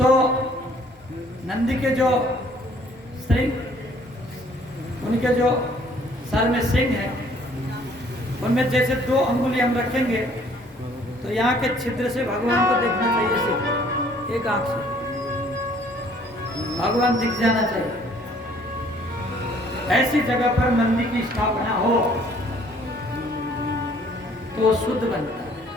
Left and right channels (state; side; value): normal; both; correlation 0.59